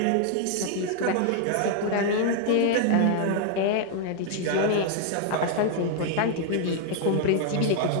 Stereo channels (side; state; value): both; different; correlation 0.00